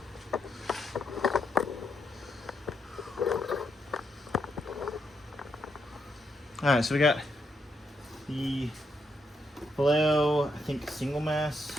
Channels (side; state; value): both; normal; correlation 0.80